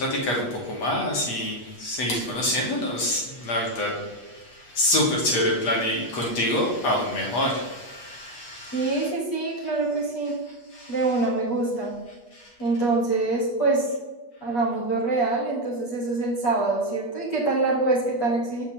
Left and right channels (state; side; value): late; right; 8.3 ms